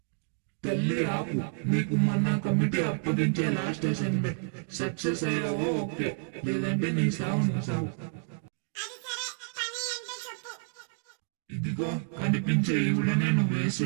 తల్లి ఆపు, నీకు మొన్న కమిటీ అప్పగించే లాస్ట్ అసైన్మెంట్ సక్సెస్ అయ్యావో ఓకే, లేదంటే నీ సావు నువ్వు సావు. ఇదిగో కనిపించే ఈవిడనే నువ్వు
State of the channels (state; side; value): silent; left; 58 dB below the other